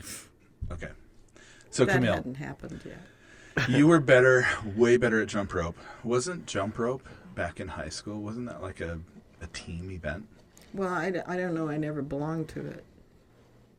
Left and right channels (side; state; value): both; identical; correlation 1.00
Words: Okay. So That Camille, hadn't happened yet. you were better, way better at jump rope. Wasn't jump rope back in high school, wasn't that like a team event? Well, I don't know. I never belonged to it.